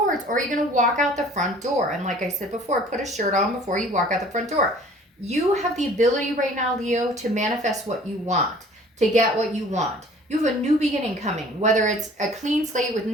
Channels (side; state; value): both; normal; correlation 0.50